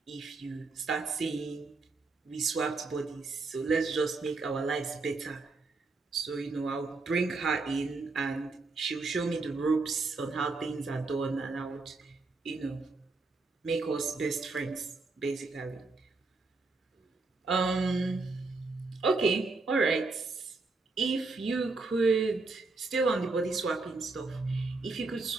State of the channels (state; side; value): quieter; left; 3.8 dB